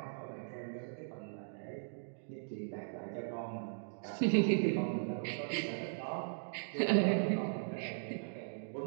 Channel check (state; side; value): silent; left; digital silence